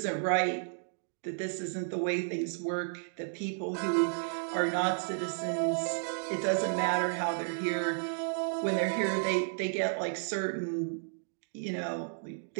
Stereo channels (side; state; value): left; silent; digital silence